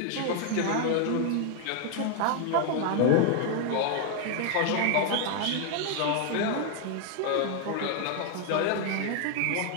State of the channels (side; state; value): both; different; correlation 0.00